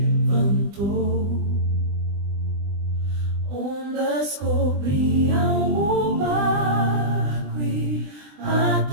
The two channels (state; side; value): late; left; 20 ms